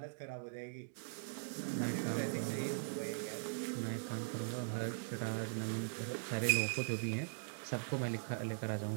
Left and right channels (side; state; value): left; silent; digital silence